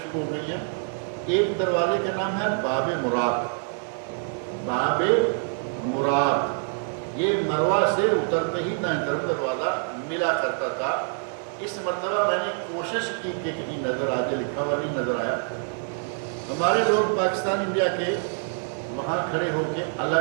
ہو گئی ہیں۔ ایک دروازے کا نام ہے باب مراد، باب مراد، یہ مروہ سے اترتے ہی دائیں طرف دروازہ ملا کرتا تھا۔ اس مرتبہ میں نے کوشش کی کہ کہیں نظر آ جائے، لکھا ہوا نہیں نظر آیا۔ ہمارے لوگ پاکستان انڈیا کے وہاں کھڑے ہو کے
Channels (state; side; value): silent; left; 56 dB below the other